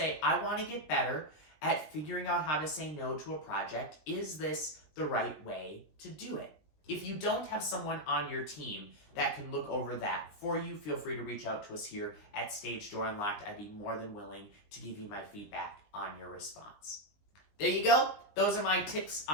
I want to get better at figuring out how to say no to a project. Is this the right way to do it? If you don't have someone on your team that can look over that for you, feel free to reach out to us here at Stage Door Unlocked. I'd be more than willing to give you my feedback on your response. There you go. Those are my tips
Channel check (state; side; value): late; right; 20 ms